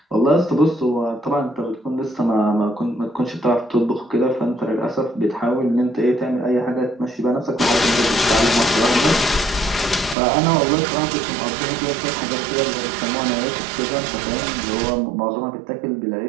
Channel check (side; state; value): left; drops out; at 10.2 s